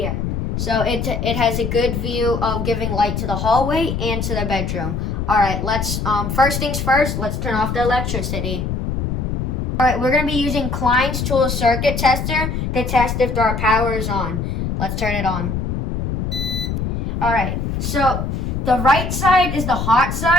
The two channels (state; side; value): noise; left; rumble, 2 dB below the sound